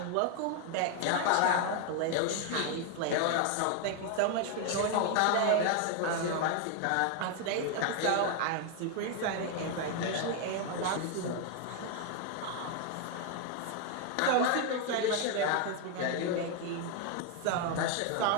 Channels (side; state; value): both; different; correlation 0.01